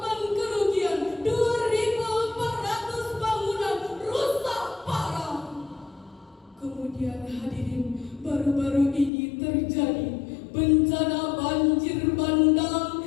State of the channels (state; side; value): drops out; right; at 9.1 s